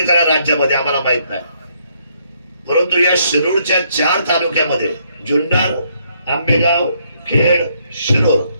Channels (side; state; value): both; inverted; correlation -0.71